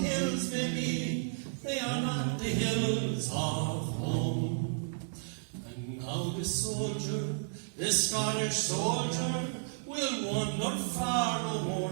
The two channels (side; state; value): left; silent; digital silence